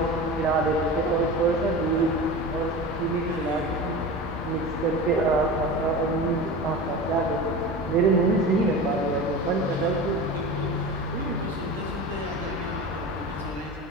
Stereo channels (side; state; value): both; normal; correlation 0.30